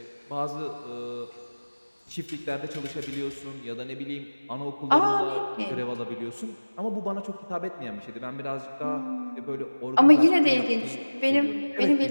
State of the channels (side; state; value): both; inverted; correlation -1.00